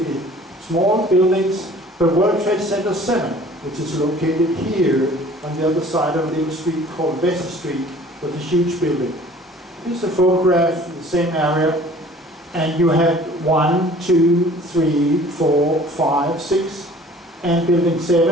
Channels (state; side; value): normal; both; correlation 0.50